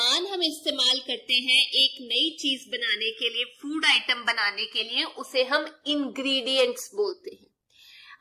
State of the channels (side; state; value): both; identical; correlation 1.00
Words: हम इस्तेमाल करते हैं एक नई चीज बनाने के लिए, फूड आइटम बनाने के लिए, उसे हम इंग्रेडिएंट्स बोलते हैं।